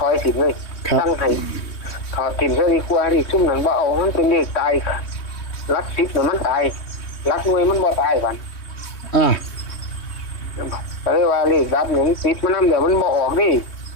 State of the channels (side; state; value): right; late; 3.2 ms